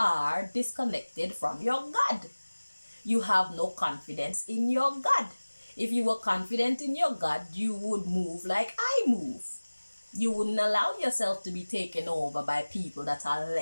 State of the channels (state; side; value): inverted; both; correlation -1.00